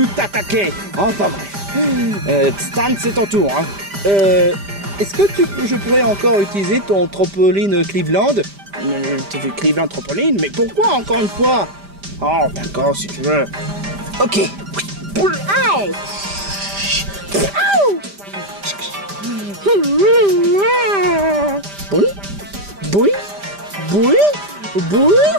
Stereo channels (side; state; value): left; late; 5.0 ms